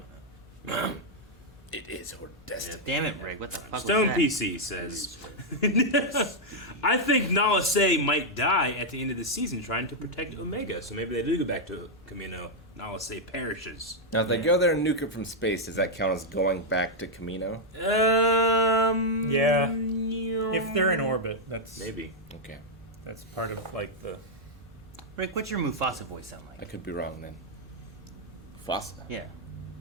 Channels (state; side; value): normal; both; correlation -0.02